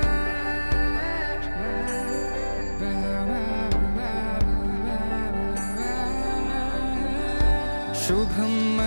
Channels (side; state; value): both; inverted; correlation -1.00